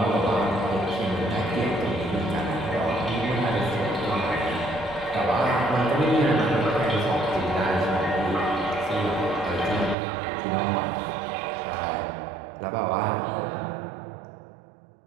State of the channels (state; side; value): drops out; left; at 10.0 s